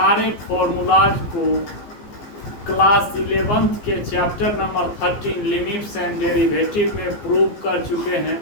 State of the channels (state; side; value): late; right; 14 ms